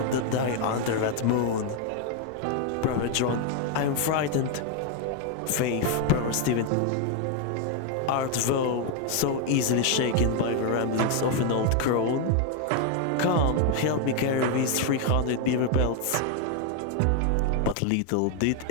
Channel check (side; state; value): both; different; correlation 0.01